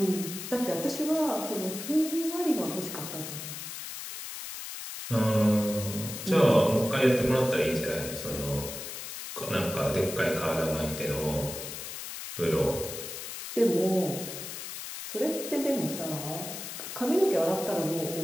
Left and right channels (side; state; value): left; noise; hiss, 8 dB below the sound